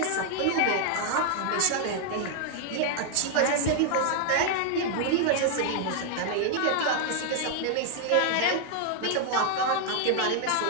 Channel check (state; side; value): different; both; correlation 0.00